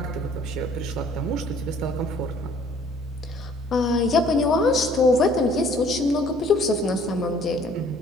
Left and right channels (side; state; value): both; normal; correlation 0.56